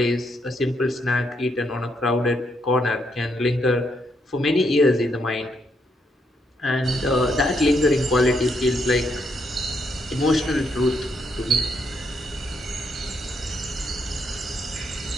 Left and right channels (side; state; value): both; normal; correlation 0.76